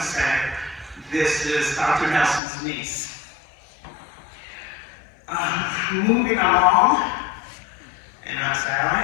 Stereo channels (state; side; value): drops out; right; at 2.4 s